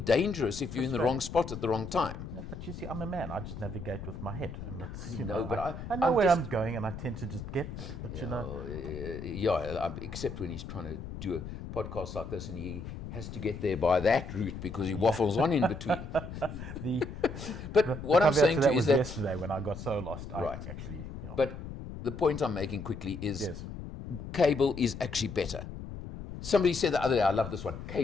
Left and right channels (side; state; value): left; noise; rumble, 9 dB below the sound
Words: if you're in the wrong spot at the wrong time. Yeah, but you see, I'm a man. I just navigate with my head, and it's you know, know. but I know I'm where just- I'm going, and I tend to just get there. But you know, Except when he's trying to do a podcast like this and he has to get there by that route because he waffles on in between. the But what I'm caveat saying to that you was is that, yesterday when I got so lost. Right. I actually. Yeah. but the point I'm making quickly is Yes. cable is actually better. Somebody said the other day, I love this one,